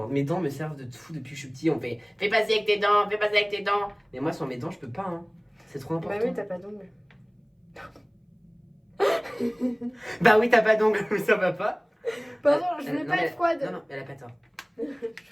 Mes dents me servent de tout depuis que je suis petit. On fait fais passer avec tes dents, fais passer avec tes dents. Mais moi, sans mes dents, je peux pas. Hein. C'est trop important. Bah oui, t'as pas d'ongles. Bah oui, t'as pas d'ongles, mais ça va pas. Pardon, je voulais Non, pas mais- être froide. Non, non, elle a pas tort.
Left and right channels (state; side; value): identical; both; correlation 1.00